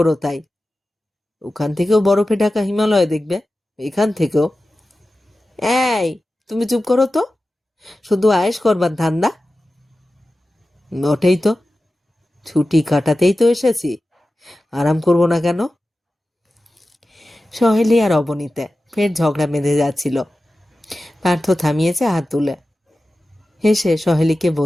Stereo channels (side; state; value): both; normal; correlation 0.94